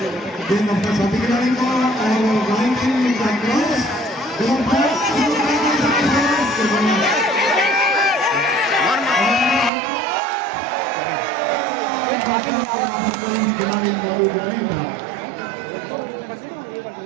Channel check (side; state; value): left; drops out; at 9.7 s